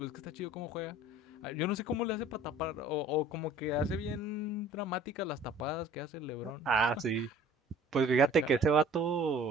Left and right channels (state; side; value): normal; both; correlation 0.50